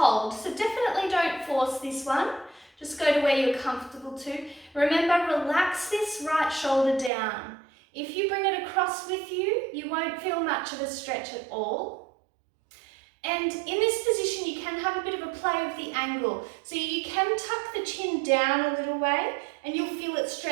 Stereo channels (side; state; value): left; drops out; at 7.1 s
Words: So definitely don't force this one. Just go to where you're comfortable to. Remember, relax this right shoulder down. If you bring it across with you, you won't feel much of a stretch at all. And in this position, you can have a bit of a play with the angle. So you can tuck the chin down a little way and you'll feel it